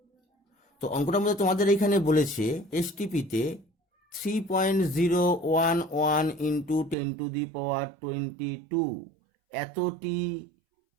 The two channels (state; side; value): drops out; left; at 7.0 s